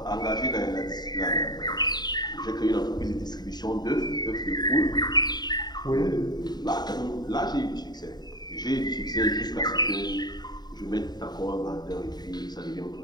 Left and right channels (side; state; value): right; late; 0.20 ms